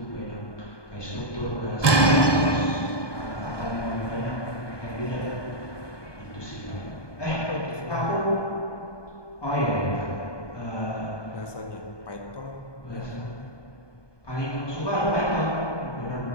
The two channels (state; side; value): late; right; 1.2 ms